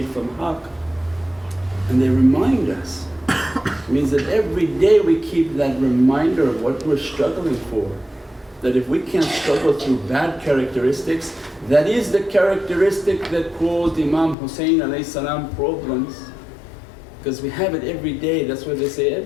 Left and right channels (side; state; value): right; drops out; at 14.4 s